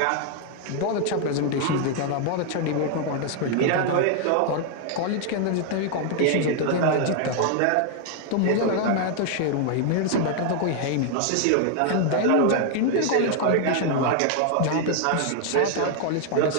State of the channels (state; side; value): different; both; correlation 0.00